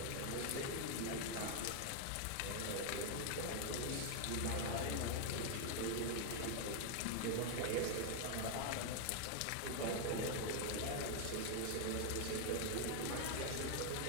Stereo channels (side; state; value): both; different; correlation 0.00